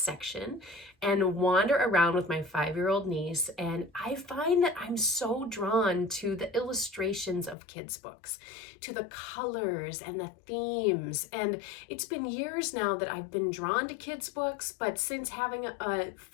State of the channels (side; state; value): right; drops out; at 7.6 s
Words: and wander around with my 5-year-old niece. And I find that I'm so drawn to the illustrations of kids' books, to the colors and the themes. And it's been years now that I've been drawn to kids' books, but since having a